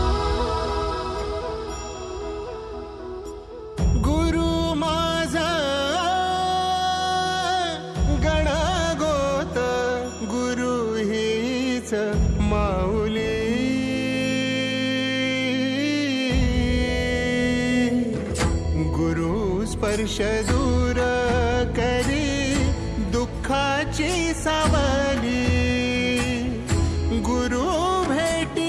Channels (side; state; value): both; identical; correlation 1.00